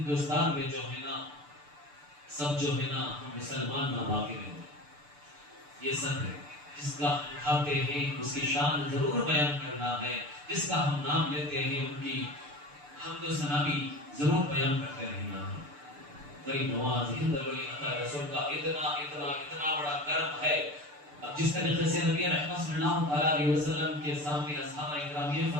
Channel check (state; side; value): late; left; 6.8 ms